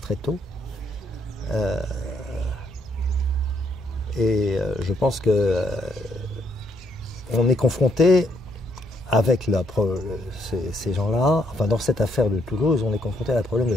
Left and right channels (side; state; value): both; normal; correlation 0.73